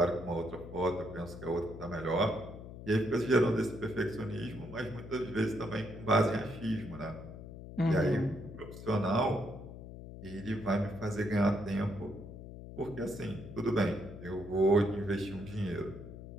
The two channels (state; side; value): noise; left; hum, 12 dB below the sound